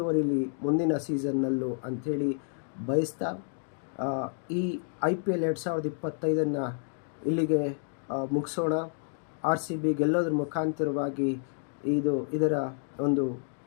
ಮುಂದಿನ ಸೀಸನ್ನಲ್ಲೂ ಅಂಥೇಳಿ ಬಯಸ್ತಾ ಈ IPL 2025 ಇಲ್ಲಿಗೆ ಮುಗಿಸೋಣ. RCB ಗೆಲ್ಲೋದ್ರ ಮುಖಾಂತರವಾಗಿ ಇದರ ಒಂದು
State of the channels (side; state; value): right; silent; 58 dB below the other